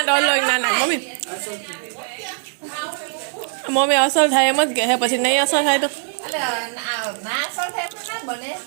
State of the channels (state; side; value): silent; left; digital silence